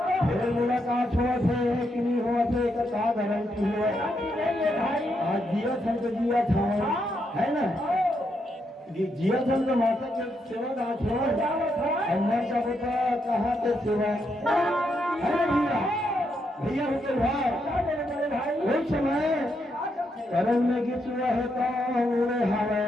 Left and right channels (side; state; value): both; normal; correlation 0.80